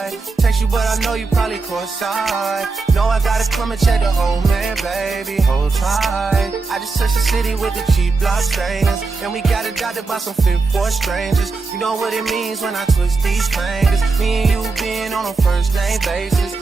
Text you, but I know you probably cross-eyed. Know I gotta come and check the whole man, baby. Hold tight. I just touched the city with the cheap block stainers, and we got adopted by some fit for strangers. You know what it means when I twist these fingers. Me and you being on a first name basis.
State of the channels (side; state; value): left; quieter; 4.1 dB